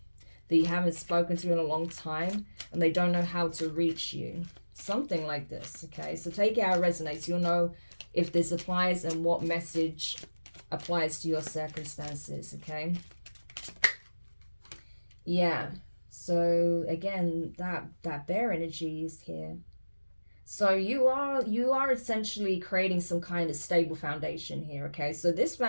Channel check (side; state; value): both; inverted; correlation -1.00